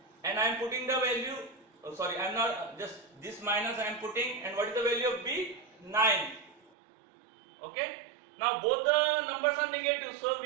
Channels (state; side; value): drops out; left; at 6.7 s